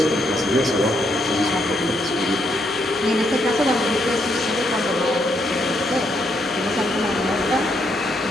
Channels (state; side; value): normal; both; correlation 0.76